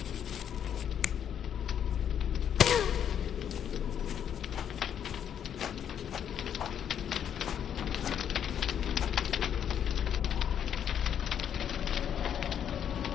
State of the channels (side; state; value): right; quieter; 9.0 dB